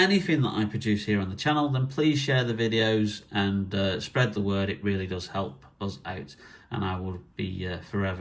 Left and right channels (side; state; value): both; identical; correlation 1.00